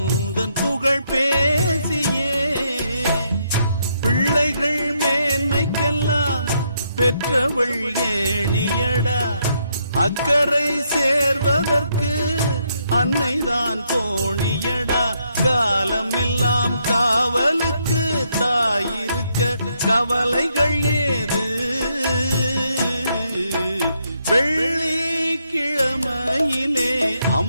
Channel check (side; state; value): both; inverted; correlation -0.76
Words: புகழ் பேசியே பிள்ளைகள் மேன்மைக்கெல்லாம் பெற்றவள் ஏணியடா அக்கறை சேர்வதற்கு அன்னைதான் தோணியடா காலம் எல்லாம் காவலுக்கு தாயிருக்க கவலைகள் ஏது வெள்ளிக்கிழமையிலே